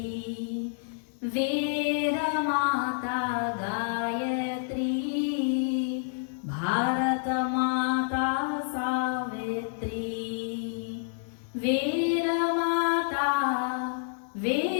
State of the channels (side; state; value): right; silent; digital silence